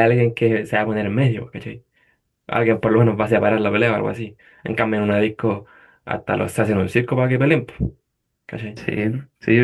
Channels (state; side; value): identical; both; correlation 1.00